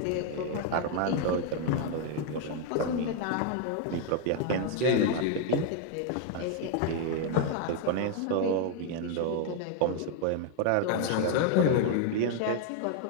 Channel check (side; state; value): both; different; correlation 0.00